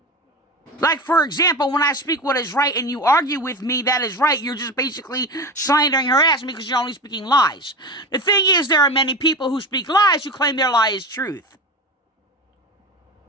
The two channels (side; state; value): both; normal; correlation 0.27